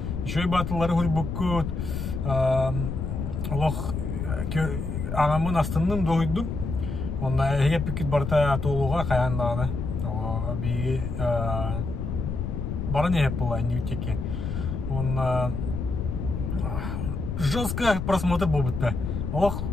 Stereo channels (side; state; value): left; noise; rumble, 4 dB below the sound